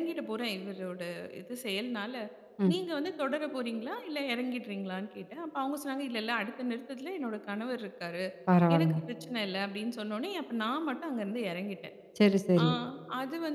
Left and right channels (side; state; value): both; identical; correlation 1.00